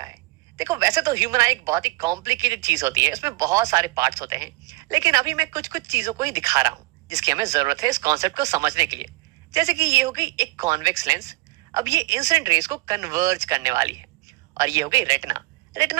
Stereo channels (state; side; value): quieter; left; 22.6 dB